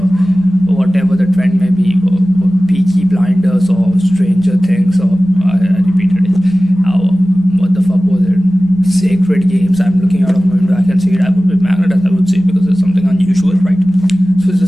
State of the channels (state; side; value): normal; both; correlation 0.97